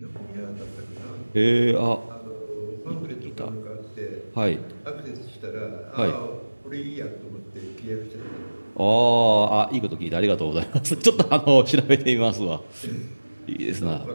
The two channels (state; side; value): inverted; both; correlation -1.00